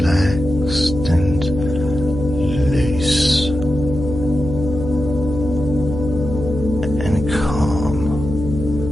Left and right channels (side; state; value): left; noise; hum, 7 dB below the sound